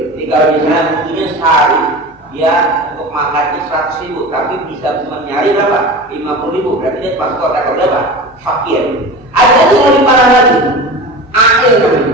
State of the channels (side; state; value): both; normal; correlation 0.32